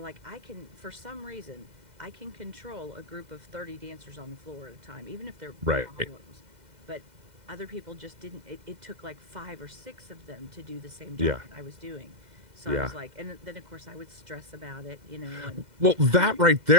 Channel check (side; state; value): left; late; 2.0 ms